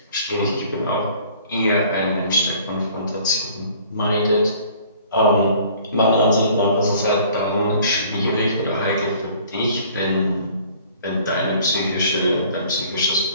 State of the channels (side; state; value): both; inverted; correlation -0.53